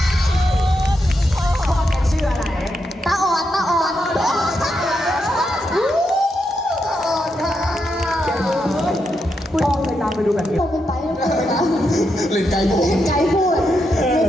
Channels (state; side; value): normal; both; correlation 0.83